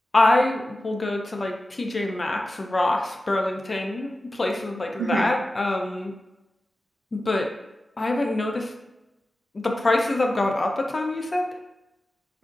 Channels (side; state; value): both; normal; correlation 0.94